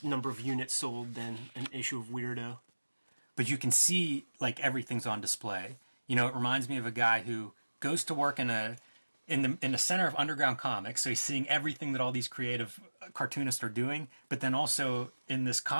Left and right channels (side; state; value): both; inverted; correlation -1.00